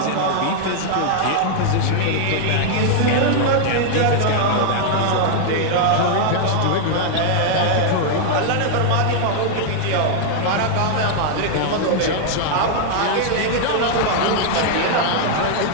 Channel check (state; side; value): different; both; correlation 0.00